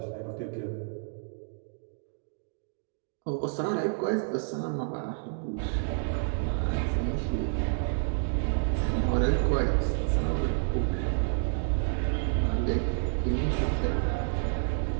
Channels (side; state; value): left; silent; digital silence